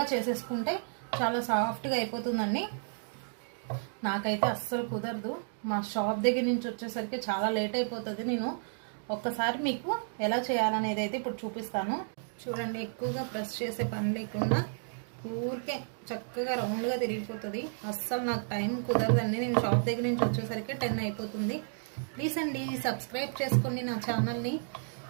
చేసేసుకుంటే చాలా సాఫ్ట్గా అయిపోతుందండి. నాకైతే అస్సలు కుదరదు. మా షాప్ దగ్గర నుంచి వచ్చేసరికి చాలా లేట్ అయిపోతుంది. నేను ఒక్కసారి మీకు ఎలా చేయాలనేది అయితే ఇప్పుడు చూపిస్తాను. చూడండి, ఎక్కువగా ప్రెస్ చేసే పని లేకుండా ఊరికే చక్కగా రౌండ్గా తిరిగిపోతుంది. అస్సలు నాకు టైం కుదరదండి. నేను షాప్ దగ్గర నుంచి వచ్చేసరికి 10 అయిపోతుంది. ప్లీజ్ అండి సబ్స్క్రైబ్ చేసుకోండి నా ఛానల్ని.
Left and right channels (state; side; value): silent; left; digital silence